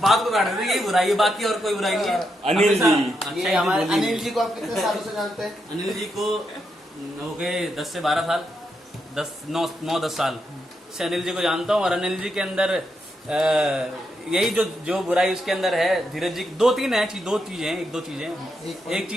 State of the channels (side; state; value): both; normal; correlation 0.82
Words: को काट देते हैं। यही बुराई है, बाकी और कोई बुराई नहीं है। अनिल जी, ये हमारे अनिल जी को आप कितने सालों से जानते हैं? अनिल जी को हो गए 10 से 12 साल, 9-10 साल से अनिल जी को जानता हूँ। और अनिल जी के अंदर यही जो बुराई उसके अंदर है, धीरज जी दो चीजें हैं। एक